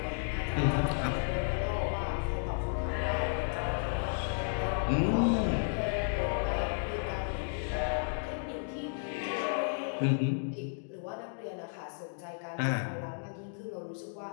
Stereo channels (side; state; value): right; silent; digital silence